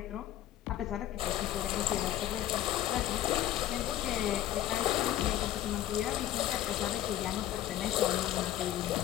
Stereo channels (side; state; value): right; quieter; 12.9 dB